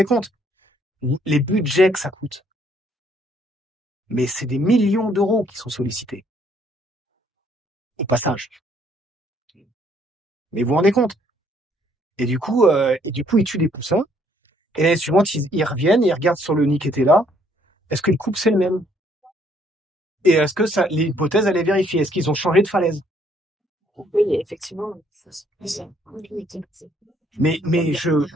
compte, les budgets que ça coûte. Mais c'est des millions d'euros qui sont sollicités. Au passage. Mais vous vous rendez compte. Et du coup, ils tuent des poussins. Et l'année suivante, ils reviennent et ils regardent sur le nid qui était là. Est-ce que le couple, c'est le même? Et est-ce que l'hypothèse, elle est vérifiée? Est-ce qu'ils ont changé de falaise? Oui, effectivement. Mais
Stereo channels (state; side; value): normal; both; correlation 0.66